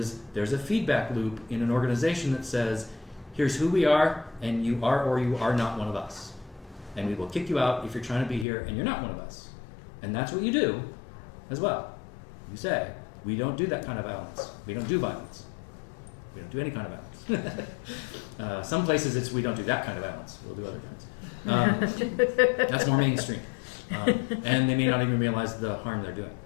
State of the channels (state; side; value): drops out; right; at 8.5 s